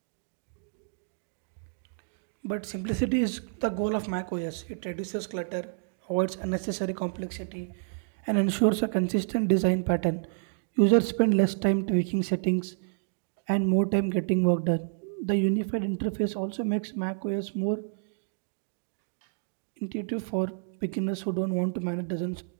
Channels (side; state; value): left; silent; digital silence